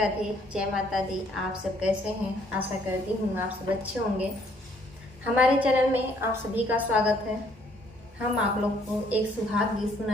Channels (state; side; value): normal; both; correlation 0.64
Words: जय माता दी। आप सब कैसे हैं? आशा करती हूँ आप सब अच्छे होंगे। हमारे चैनल में आप सभी का स्वागत है। हम आप लोग को एक सुहाग गीत